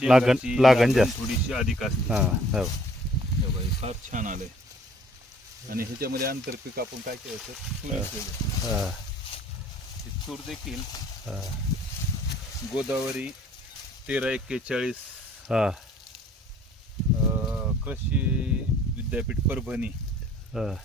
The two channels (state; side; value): normal; both; correlation 0.57